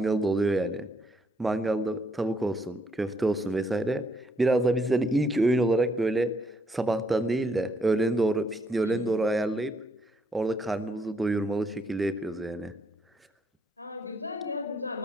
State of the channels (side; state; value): both; normal; correlation 0.72